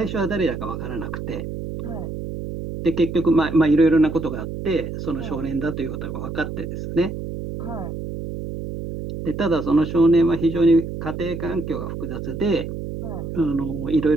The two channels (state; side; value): noise; right; hum, 7 dB below the sound